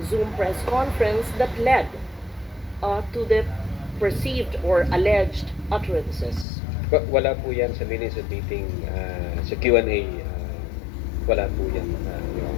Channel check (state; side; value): drops out; right; at 6.5 s